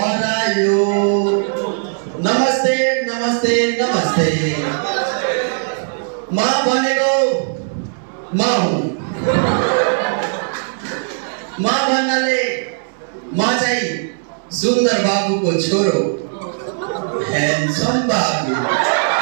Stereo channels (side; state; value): left; silent; 61 dB below the other